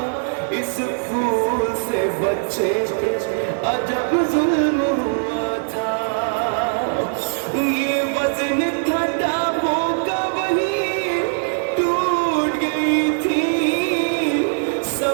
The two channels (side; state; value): left; silent; digital silence